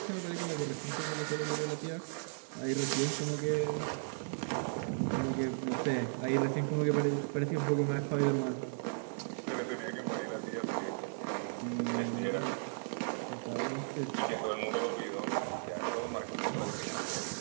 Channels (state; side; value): silent; left; 54 dB below the other